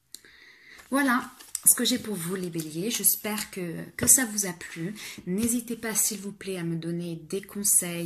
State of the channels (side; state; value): both; identical; correlation 1.00